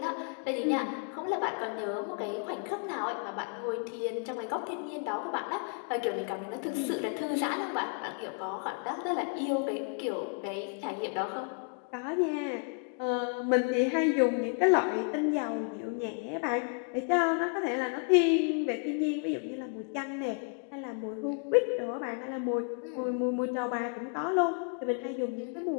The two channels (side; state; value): right; quieter; 39.5 dB